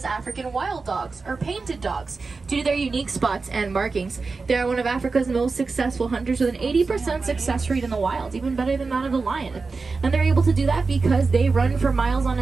African wild dogs, or painted dogs, due to their unique spots and markings. They are one of Africa's most successful hunters with an 80% success rate in the wild, even better than that of the lion. And they're able to do that because they run for miles on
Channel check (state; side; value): quieter; left; 4.2 dB